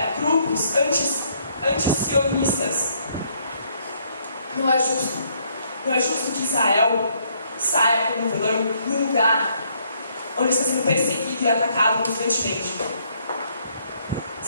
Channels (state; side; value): inverted; both; correlation -0.69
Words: grupos anti-sionistas. Não é justo. Não é justo que Israel saia como vilão num lugar onde está sendo perseguido e atacado constantemente.